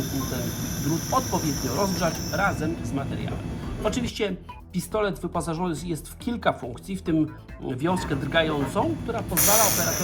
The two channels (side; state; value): both; identical; correlation 1.00